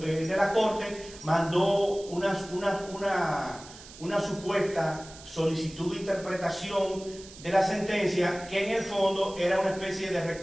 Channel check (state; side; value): noise; right; hiss, 18 dB below the sound